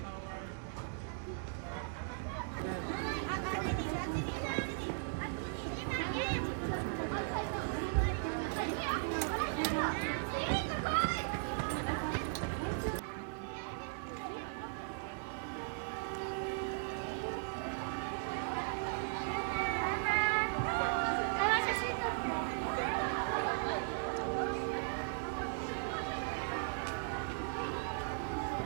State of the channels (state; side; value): silent; left; digital silence